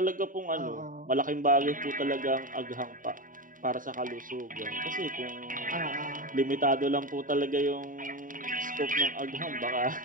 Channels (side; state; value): left; late; 0.39 ms